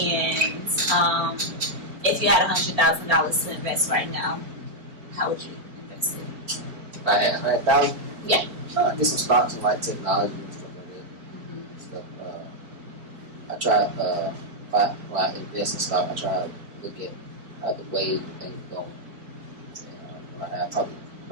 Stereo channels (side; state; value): left; late; 4.4 ms